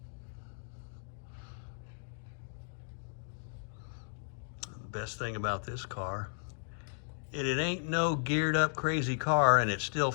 best thing about this car, it ain't no geared up crazy car, and it's still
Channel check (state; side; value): silent; right; digital silence